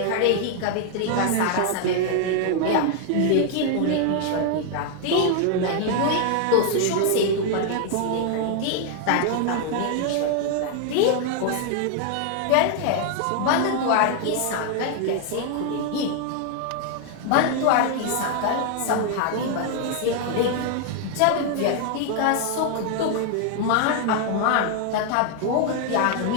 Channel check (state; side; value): different; both; correlation 0.00